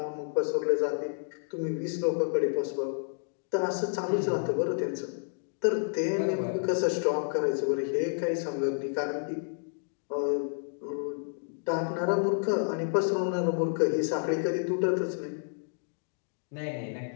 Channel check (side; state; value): right; silent; digital silence